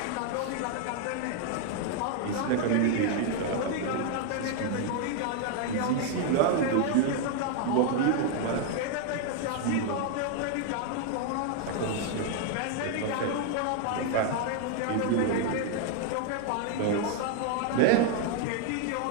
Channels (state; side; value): different; both; correlation 0.00